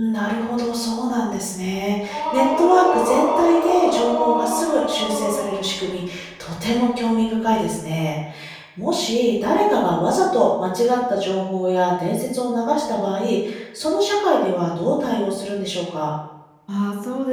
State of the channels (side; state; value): both; identical; correlation 1.00